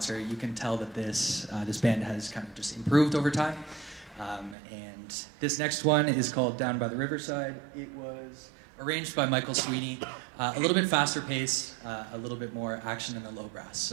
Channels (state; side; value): drops out; left; at 4.5 s